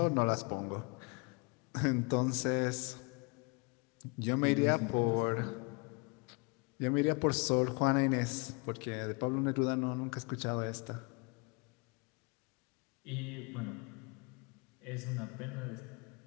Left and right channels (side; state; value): right; quieter; 31.1 dB